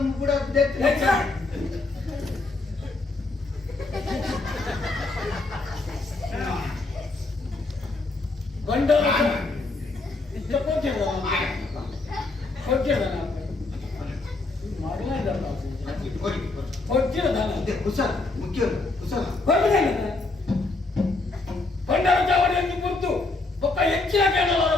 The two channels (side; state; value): right; quieter; 3.4 dB